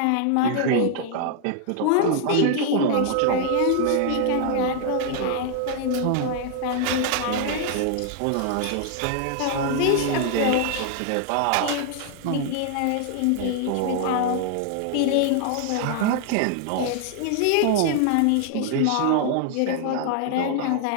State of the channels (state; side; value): different; both; correlation 0.00